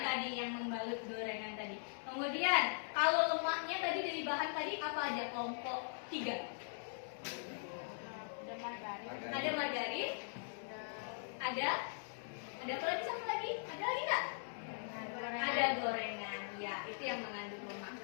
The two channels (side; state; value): right; silent; digital silence